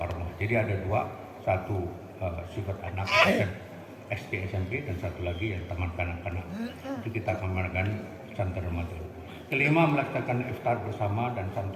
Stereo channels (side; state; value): both; identical; correlation 1.00